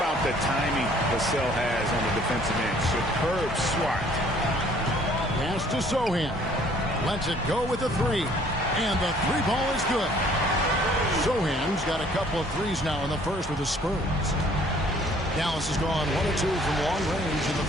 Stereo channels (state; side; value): normal; both; correlation 0.58